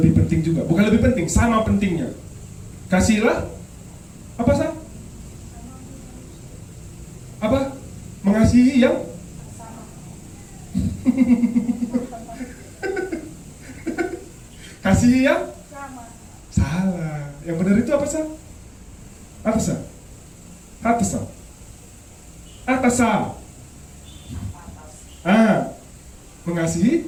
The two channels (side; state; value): both; identical; correlation 1.00